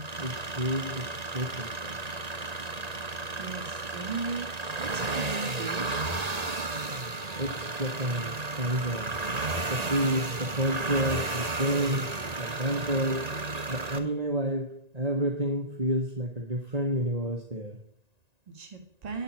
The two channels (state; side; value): late; left; 1.9 ms